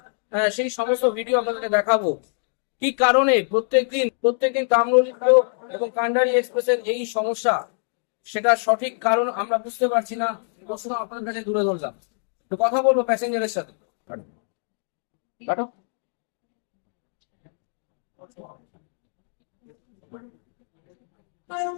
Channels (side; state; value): right; silent; 62 dB below the other